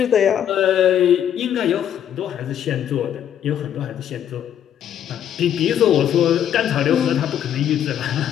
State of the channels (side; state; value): right; quieter; 9.8 dB